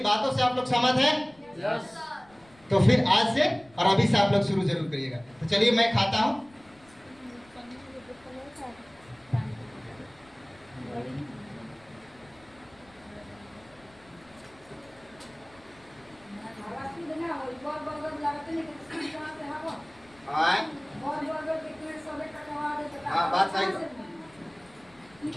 बातों से आप लोग सहमत हैं? तो फिर आज से और अभी से आप लोग शुरू जरूर करिएगा। तो चलिए मैं खाता हूँ। हाँ, बात सही है।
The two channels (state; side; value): noise; left; rumble, 28 dB below the sound